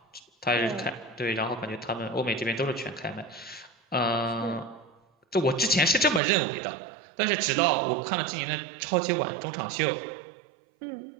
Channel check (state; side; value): drops out; left; at 6.2 s